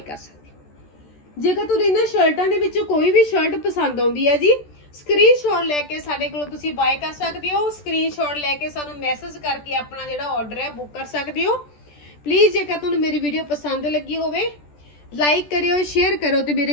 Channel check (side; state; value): right; late; 14 ms